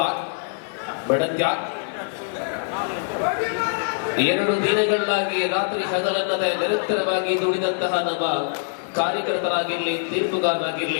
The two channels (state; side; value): silent; right; digital silence